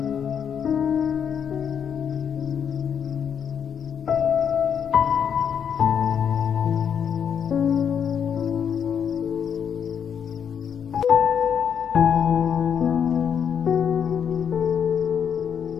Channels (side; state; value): right; quieter; 7.8 dB